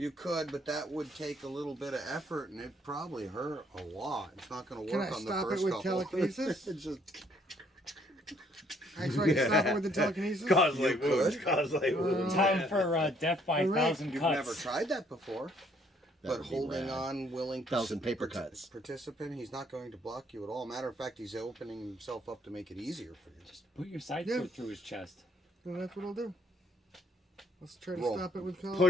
could, but that would take a little bit of effort, and it probably hurt a lot. It's not going to Can work I on the stop it first with couple. telekinesis? It's just, Actually, I can stop it with the telekinesis. Cause You like wounds. could. Cause like wounds. Time for death by All right. 1,000 you've cuts. never tried that before. That But would be holding rad. on, willing 1,000 paper cuts. participant, he's not going to block you at all. Matter of fact, he's opening himself up to make it easier for you. Just Put your side Yeah. sword through his chest. Well, that's what I'll do. Let's try to Roll. stop it with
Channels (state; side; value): normal; both; correlation 0.66